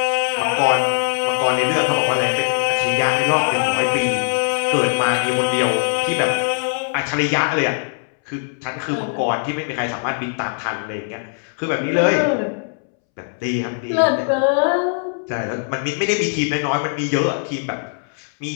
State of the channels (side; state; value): right; silent; 65 dB below the other